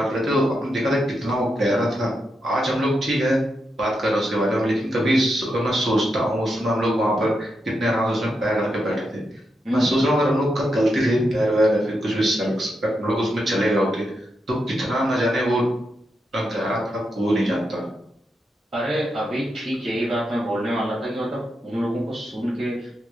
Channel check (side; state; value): both; normal; correlation 0.84